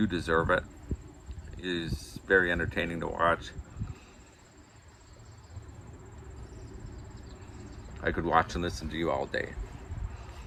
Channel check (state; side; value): identical; both; correlation 1.00